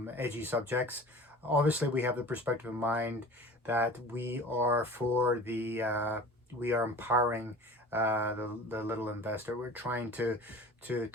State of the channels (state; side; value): normal; both; correlation 0.40